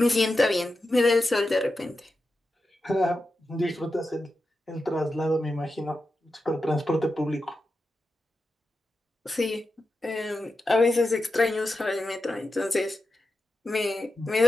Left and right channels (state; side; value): normal; both; correlation 0.90